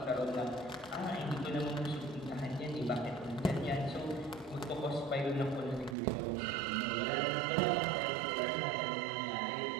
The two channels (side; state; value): left; drops out; at 6.0 s